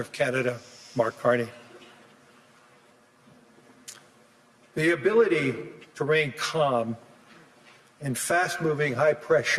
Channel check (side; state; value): both; identical; correlation 1.00